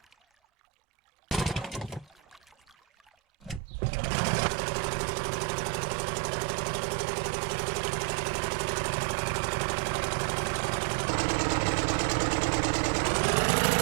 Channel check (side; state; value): left; drops out; at 3.6 s